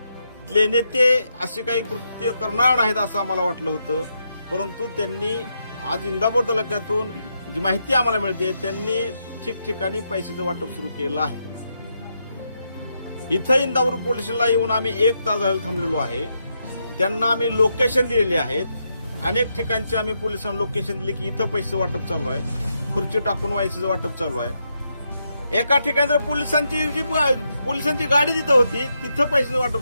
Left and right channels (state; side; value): inverted; both; correlation -0.81